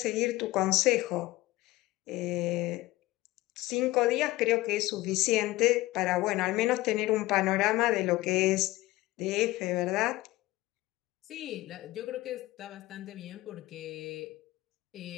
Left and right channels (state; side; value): quieter; right; 18.4 dB